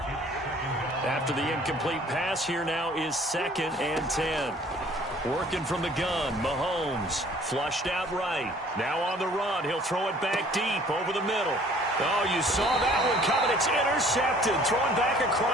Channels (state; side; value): normal; both; correlation 0.54